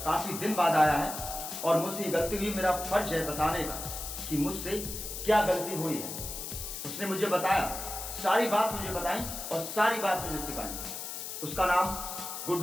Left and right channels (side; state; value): left; noise; hiss, 7 dB below the sound